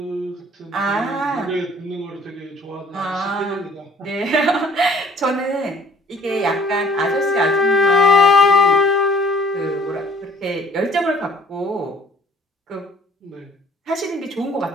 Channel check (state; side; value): normal; both; correlation 0.55